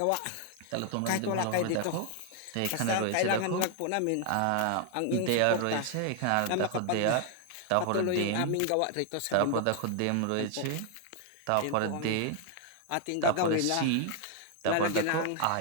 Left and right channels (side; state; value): both; different; correlation 0.00